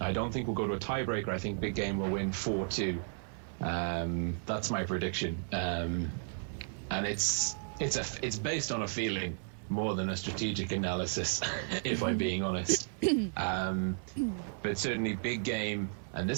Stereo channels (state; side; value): silent; left; 55 dB below the other